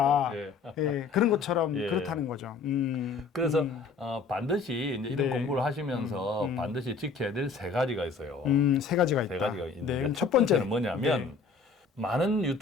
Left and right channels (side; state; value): right; quieter; 4.8 dB